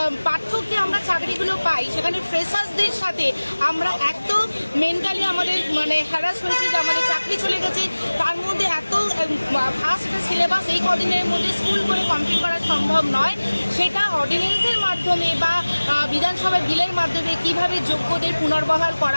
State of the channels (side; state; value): both; inverted; correlation -1.00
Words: পার্থক্যে আমরা চাকরিগুলো পাই, সেখানে ফ্রেশার্সদের সাথে আমরা এত মেন্টালি আমাদের হ্যারাস হয়েছি যে আমাদের চাকরি চলে গেছে। তার মধ্যে এত ফাস্ট সিলেবাস এই কদিনের মধ্যে স্কুল করে কমপ্লিট করা সম্ভব নয়। সেটা অর্ডিন্যান্সের মাধ্যমে বা বিধানসভার বিলের মাধ্যমে কিভাবে যোগ্যদের পুনর্বহাল